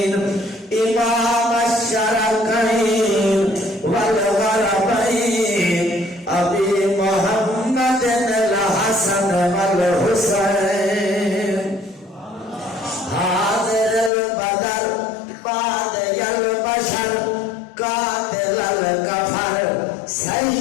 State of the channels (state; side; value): drops out; right; at 14.1 s